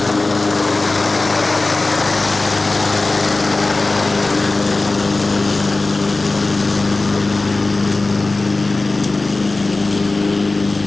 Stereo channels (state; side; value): quieter; right; 3.3 dB